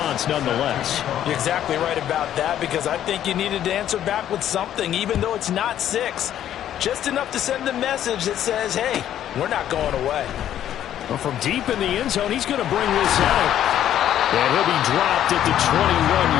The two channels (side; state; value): right; quieter; 11.1 dB